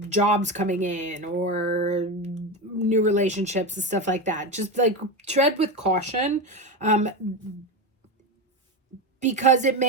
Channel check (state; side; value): normal; both; correlation 0.17